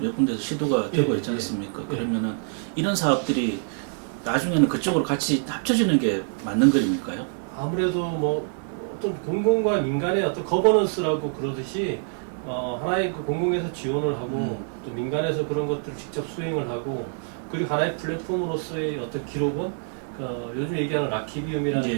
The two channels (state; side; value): silent; left; 61 dB below the other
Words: 군데서 시도가 예, 되고 있지 예, 않습니까? 예. 그러면은 이런 사업들이 나중에는 그쪽으로 같이 합쳐지는 게 맞는 거입니까요? 아무래도 뭐 어떤 공공과 민간의 어떤 거버넌스라고 그러듯이 하나의 그 공공에서 지원을 하고 또 민간에서 그런 것들을 직접 수행을 하고 그리고 하나의 플랫폼으로서의 어떤 기록원 요즘 얘기하는 라키비움이라는 예.